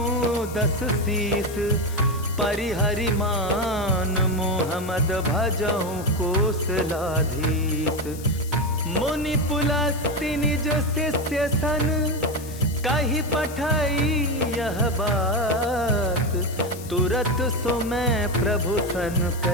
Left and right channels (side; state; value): left; noise; hiss, 16 dB below the sound